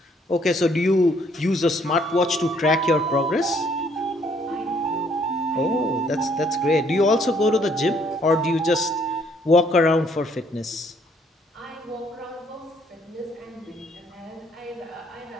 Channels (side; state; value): both; normal; correlation 0.65